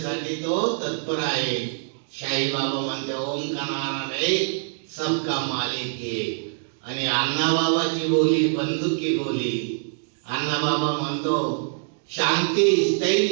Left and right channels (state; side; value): silent; left; digital silence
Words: तो तत्पर आहे. शाही बाबा म्हणते, ओम का नारायण एक, सबका मालिक एक. आणि अण्णाबाबाची बोली बंदुकी बोली. अण्णाबाबा म्हणतो, शांती,